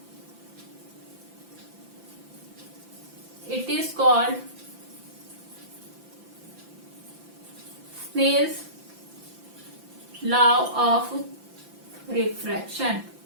It is called Snell's law of refraction.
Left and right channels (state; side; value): late; left; 5.9 ms